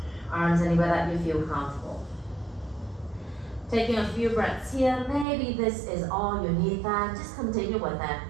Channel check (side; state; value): left; drops out; at 5.2 s